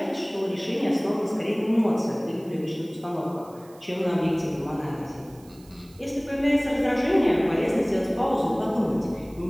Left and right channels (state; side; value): noise; right; hiss, 26 dB below the sound